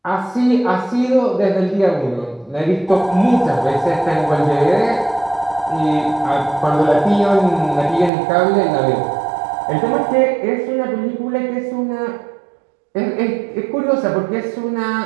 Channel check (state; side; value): drops out; left; at 8.1 s